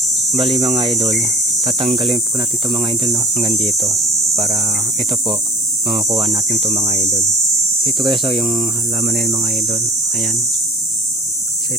Bali mga idol, tatanggalin po natin 'to mga idol, no, hanggang dito para ito po makukuha natin 'to mga idol. So ito guys, yung halaman na yun mga idol. Ayan. So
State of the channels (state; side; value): normal; both; correlation 0.44